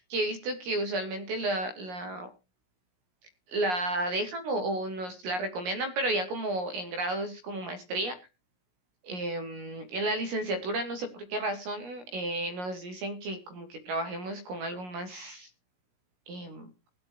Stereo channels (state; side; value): late; left; 17 ms